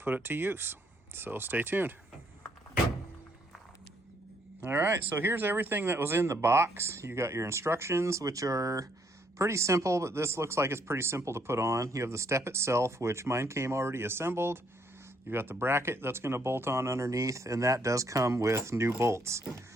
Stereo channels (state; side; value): normal; both; correlation 0.71